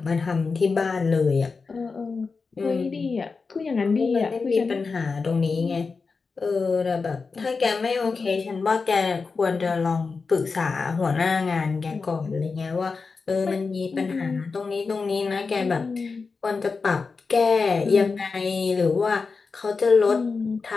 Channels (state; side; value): quieter; right; 4.6 dB